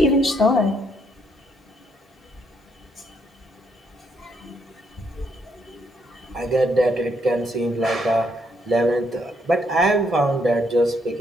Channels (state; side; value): normal; both; correlation 0.72